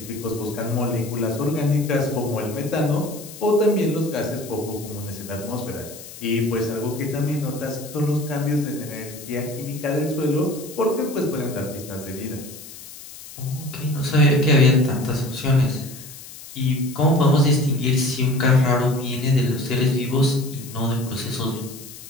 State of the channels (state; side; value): noise; left; hiss, 15 dB below the sound